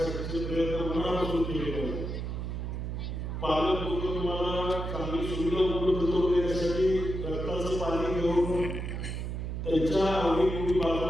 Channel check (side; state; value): right; noise; hum, 4 dB below the sound